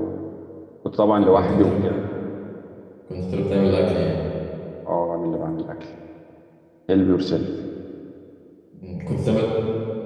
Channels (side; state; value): both; identical; correlation 1.00